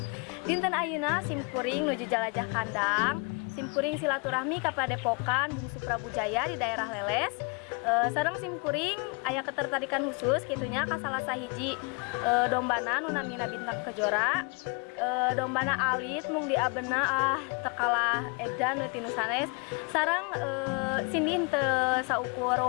Dinten ayeuna simkuring nuju Jalajah Kandang. Simkuring silaturahmi ka Padepokan Bungsu Prabu Jaya di daerah Leles. Sareng simkuring aya ketertarikan khusus kitunya ka salah sahiji dombana nu namina Bintang Kejora. Dombana alit mung diabena tekalah edan tinu sanes sareng Cindy teu saukur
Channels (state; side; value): quieter; right; 32.9 dB